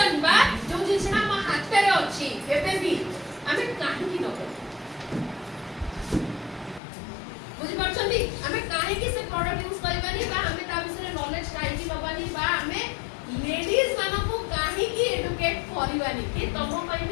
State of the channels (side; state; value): right; drops out; at 6.8 s